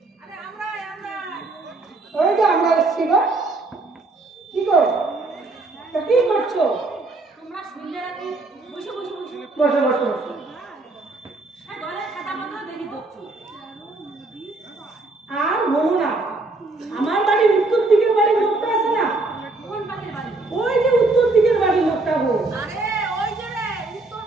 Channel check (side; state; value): left; quieter; 3.3 dB